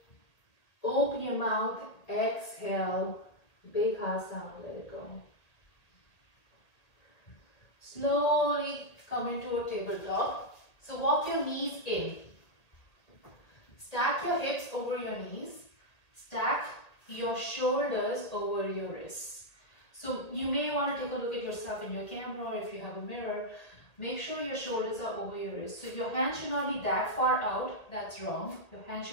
Open your mouth. Exhale. Big ha sound. Let it go. Slowly come into a tabletop. So walk your knees in. Stack your hips over your knees. Stack your shoulders over your wrists. So you may want to take a look at yourself in your camera, or if you have a mirror. Make sure your shoulders are over your wrists. So your hands should not be that far out. That's wrong. Your hands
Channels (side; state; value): right; late; 1.8 ms